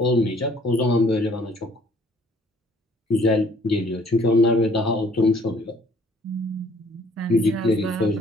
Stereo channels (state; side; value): normal; both; correlation 0.59